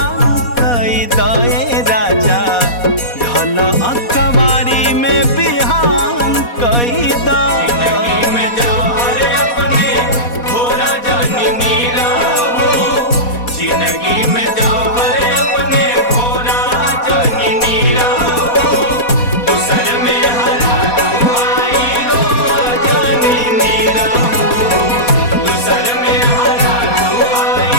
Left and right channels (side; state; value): right; late; 4.2 ms